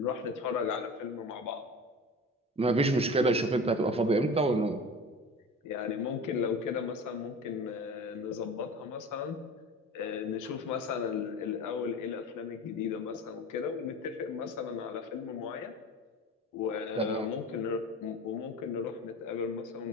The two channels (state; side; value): normal; both; correlation 0.35